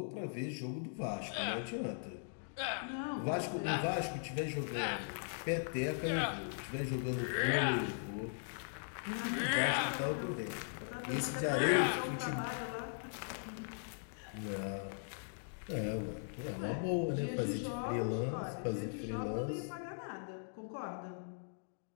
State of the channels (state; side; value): silent; right; digital silence